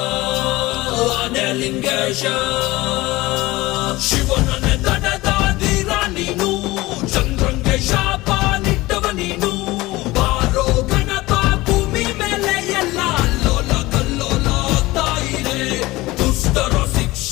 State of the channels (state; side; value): quieter; right; 19.8 dB